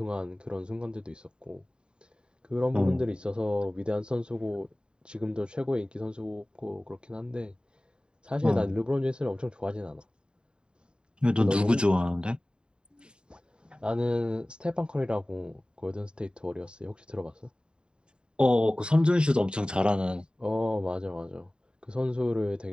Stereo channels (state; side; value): late; left; 0.050 ms